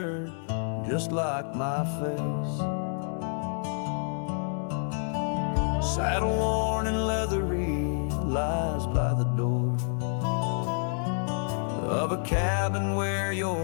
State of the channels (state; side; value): silent; right; digital silence